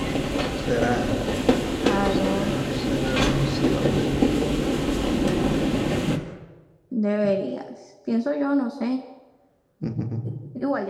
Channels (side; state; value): both; identical; correlation 1.00